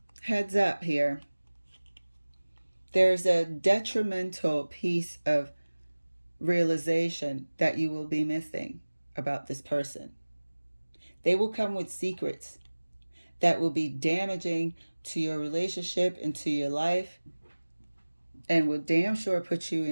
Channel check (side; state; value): both; inverted; correlation -1.00